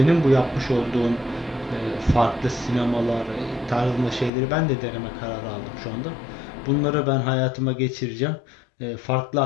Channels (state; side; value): drops out; right; at 4.3 s